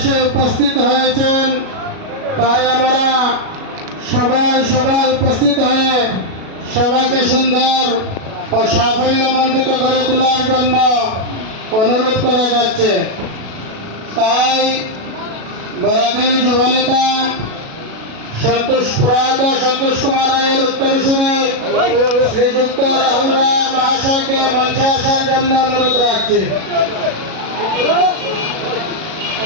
উপস্থিত হয়েছেন। তাই আমরা সবাই উপস্থিত হয়ে সবাইকে সুন্দর ও সাফল্যমণ্ডিত করে তোলার জন্য অনুরোধ করা যাচ্ছে। তাই বরাকের যুবনেতা প্রয়াত সন্তোষ কুমার রায়ের উত্তরসূরি শ্রীযুক্ত রাহুল রায় মহাশয়কে মঞ্চে আসার জন্য অনুরোধ রাখছি।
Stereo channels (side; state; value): left; late; 37 ms